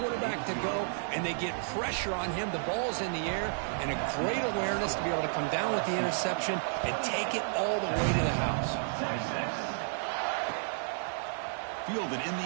quarterback to go, and they get pressure on him. The ball's in the air, and a great awareness to be able to come down with the interception and take it all the way to the house. Fielded in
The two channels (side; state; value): left; silent; 57 dB below the other